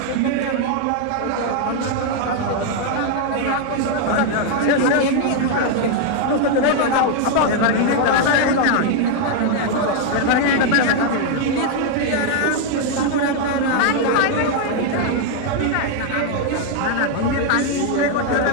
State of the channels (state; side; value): different; both; correlation 0.00